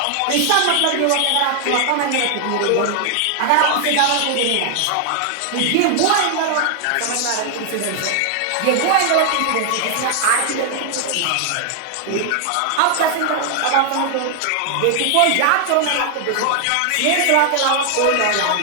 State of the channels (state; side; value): different; both; correlation 0.00